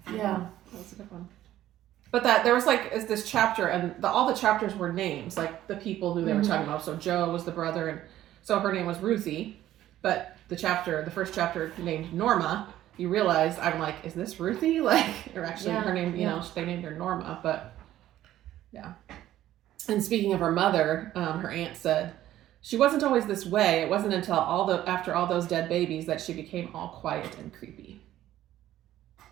find out. That was a good one. But there was this chapter, and all the chapters were names, like the people who they were talking about. So Joe was the brother, and so her name was Ruthie. But the first chapter named Norma. You realize, I'm like, is this Ruthie? Like, or actually her name, they named her Norma, but yeah. And speaking of her mother, her aunt said, she wasn't always this way. It wasn't until after all those dead babies that she became all quiet and creepy.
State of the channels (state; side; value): quieter; left; 13.3 dB